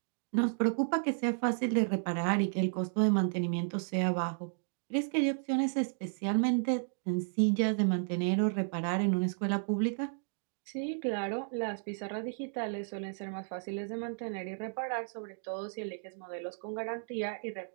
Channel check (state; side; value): silent; left; digital silence